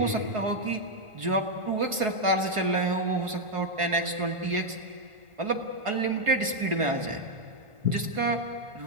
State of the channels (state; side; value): late; left; 1.5 ms